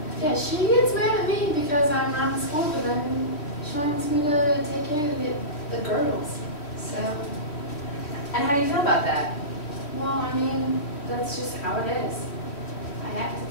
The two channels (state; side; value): late; right; 3.1 ms